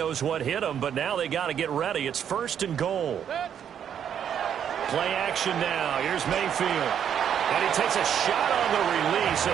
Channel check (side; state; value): left; quieter; 8.8 dB